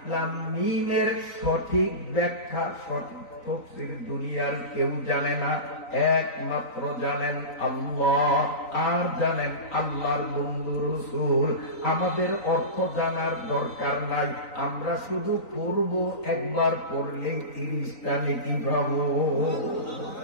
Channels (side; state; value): right; late; 3.9 ms